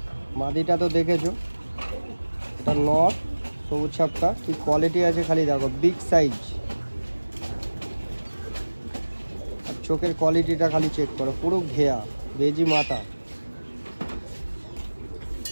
মাদিটা তো দেখেছো, এটা নর সবুজ ছাপটা, কি কোয়ালিটি আছে খালি দেখো, বিগ সাইজ। আর চোখের কোয়ালিটিটা খালি চেক করো, পুরো ঘেয়া বেজি মাথা।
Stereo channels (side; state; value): both; inverted; correlation -1.00